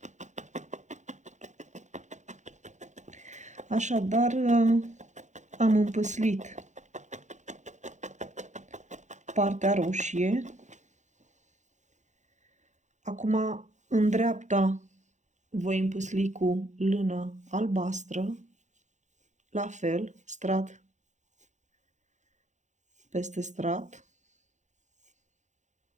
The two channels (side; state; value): left; late; 0.35 ms